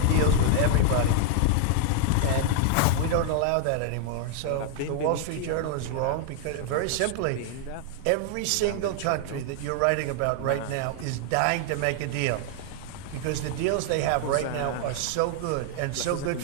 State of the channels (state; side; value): different; both; correlation 0.00